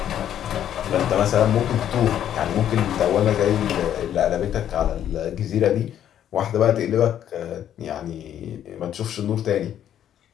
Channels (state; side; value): quieter; right; 10.4 dB